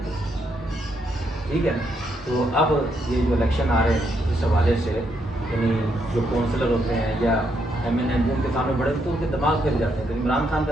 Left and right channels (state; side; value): normal; both; correlation 0.77